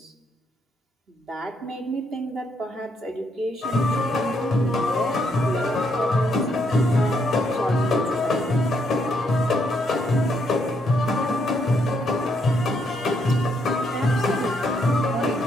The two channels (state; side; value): normal; both; correlation 0.75